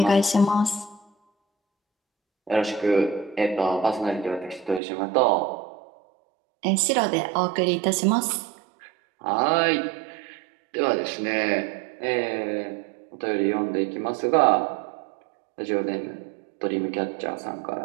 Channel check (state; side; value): drops out; left; at 4.8 s